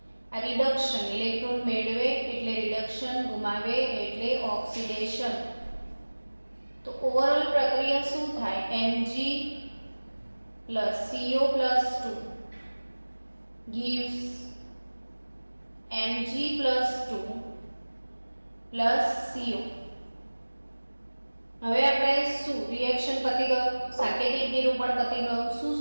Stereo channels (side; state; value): both; inverted; correlation -1.00